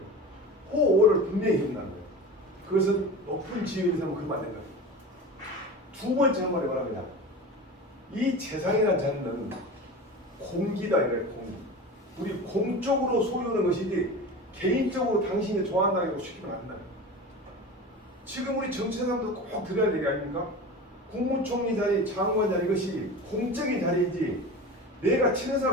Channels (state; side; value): normal; both; correlation 0.32